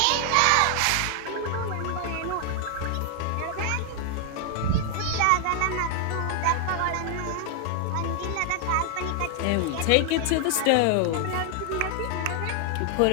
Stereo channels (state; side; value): different; both; correlation 0.00